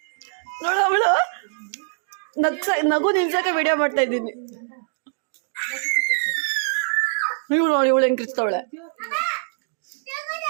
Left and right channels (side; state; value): left; silent; digital silence